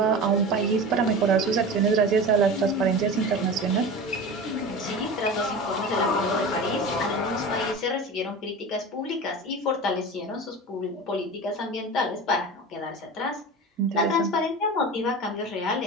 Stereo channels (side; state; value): both; normal; correlation 0.31